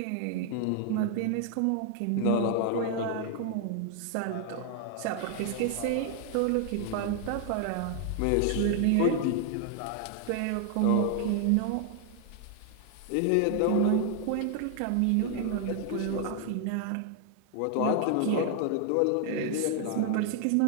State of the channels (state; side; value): different; both; correlation 0.00